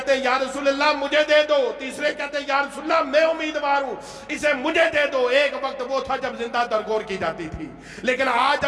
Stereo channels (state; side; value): identical; both; correlation 1.00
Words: یا رسول اللہ مجھے دے دو۔ تیسرے کہتے یا رسول اللہ میں امیدوار ہوں، اسے مجھے دے دو۔ ایک وقت وہ تھا جب زندہ درگور کی جاتی تھی، لیکن آج